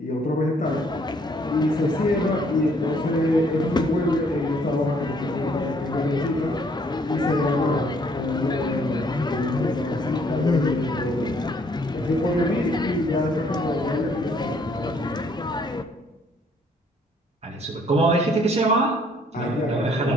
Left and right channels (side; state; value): both; normal; correlation 0.64